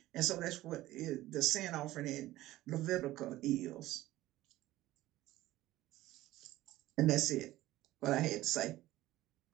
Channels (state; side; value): quieter; left; 16.2 dB